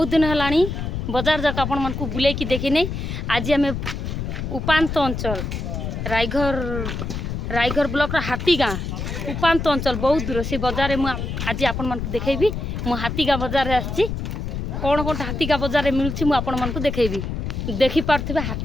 दिन है बजार जाक आपण मन को बुले की देखी आज आम उपात अंचल रायघर ब्लॉक हाथीगाँ उपात अंचल बहुत दूर से बजार में आज आपण मन को देखेबी। मु हाथीगाँ बजार आसी कौन कौन हाथीगाँ बजार मिलूँ मुझे आपण मन को देखेबी। देखी पार्थे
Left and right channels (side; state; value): left; noise; rumble, 4 dB below the sound